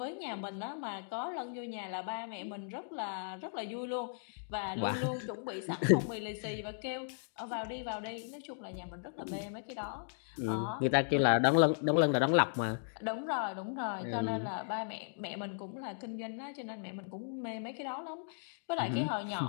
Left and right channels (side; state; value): right; silent; digital silence